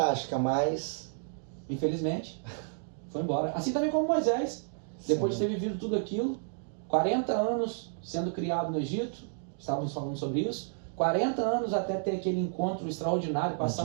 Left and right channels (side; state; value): left; silent; digital silence